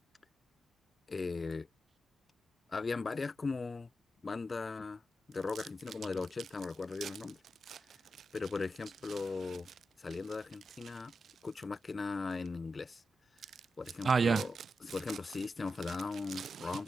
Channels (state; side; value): normal; both; correlation 0.89